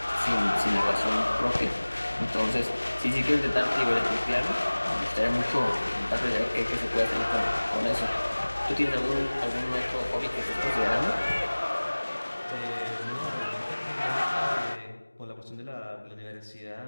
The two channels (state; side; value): inverted; both; correlation -1.00